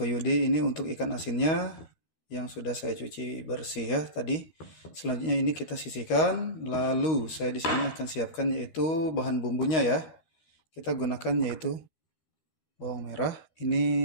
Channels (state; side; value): late; right; 13 ms